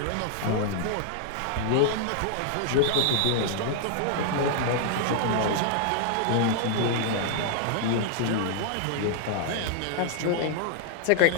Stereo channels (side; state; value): both; different; correlation 0.00